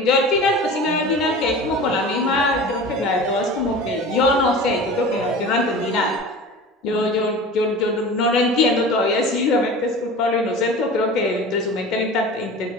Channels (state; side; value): normal; both; correlation 0.36